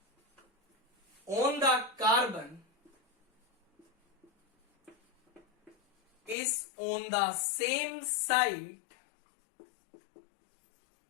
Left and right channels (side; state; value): right; drops out; at 6.4 s